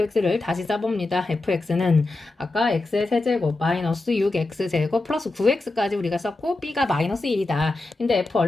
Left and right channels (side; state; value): right; quieter; 3.1 dB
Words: 다시 써봅니다. fx는 아까 x의 세제곱 마이너스 6x제곱 플러스 9x까지 우리가 썼고 b가 마이너스 1이다. 근데 f